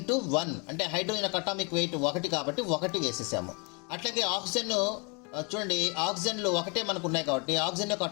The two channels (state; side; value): quieter; right; 33.0 dB